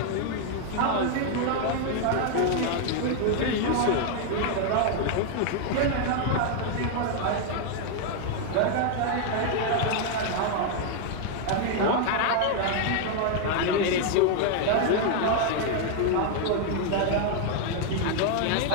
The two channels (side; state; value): both; different; correlation 0.00